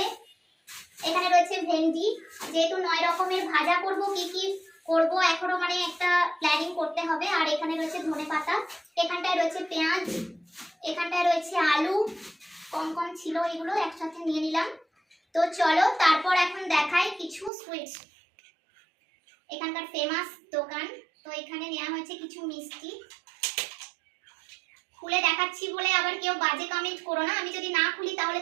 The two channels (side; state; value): left; drops out; at 17.5 s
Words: এখানে রয়েছে ভেন্ডি, যেহেতু 9 রকমের ভাজা করব, কি কি করব এখনো মানে একটা প্ল্যানিং করতে হবে। আর এখানে রয়েছে ধনেপাতা, এখানটায় রয়েছে পেঁয়াজ, এখানটায় রয়েছে আলু, কম কম ছিল, এগুলো একসাথে নিয়ে নিলাম। তো চলো তারপর এখন দেখাই কিছু সুইটস, এখানকার ফেমাস দোকান। তো এখানে নেওয়া হয়েছে কিছু মিষ্টি, খুলে দেখাচ্ছি বলে আবার কেউ বাজে কমেন্ট করো না, আমি যদি না খুলি তাহলে